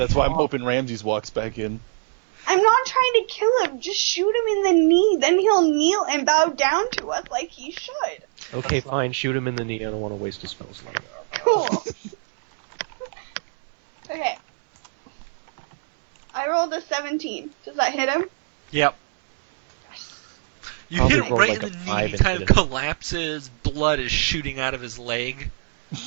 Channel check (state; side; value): silent; left; 64 dB below the other